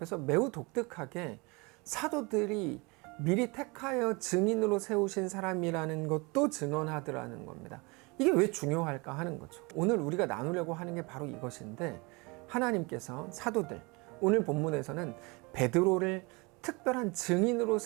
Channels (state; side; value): quieter; left; 27.3 dB